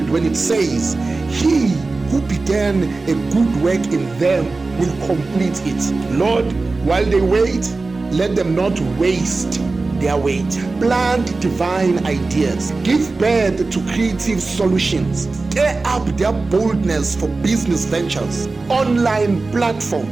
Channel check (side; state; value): left; quieter; 3.6 dB